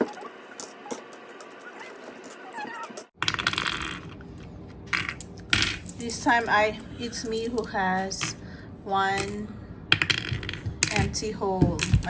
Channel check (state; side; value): identical; both; correlation 1.00